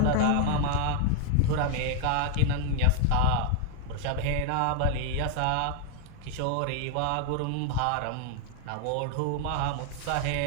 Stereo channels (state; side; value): different; both; correlation 0.00